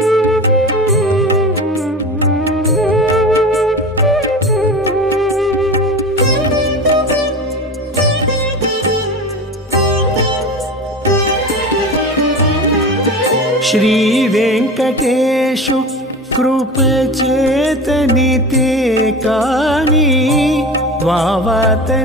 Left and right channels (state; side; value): normal; both; correlation 0.31